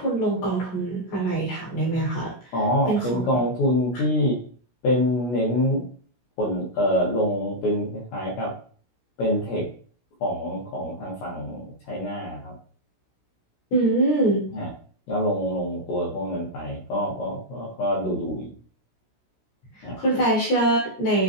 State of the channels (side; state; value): right; late; 16 ms